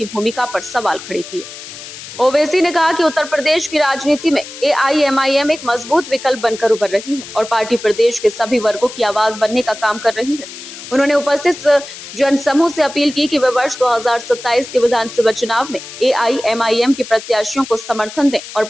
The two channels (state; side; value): noise; left; hiss, 13 dB below the sound